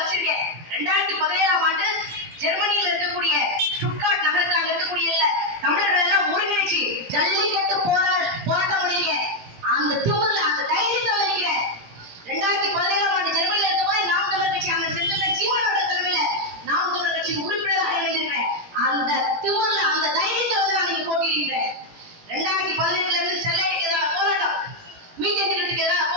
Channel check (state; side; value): late; left; 17 ms